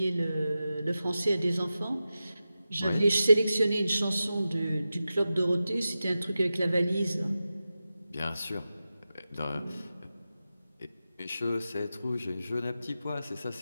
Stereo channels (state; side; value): inverted; both; correlation -0.93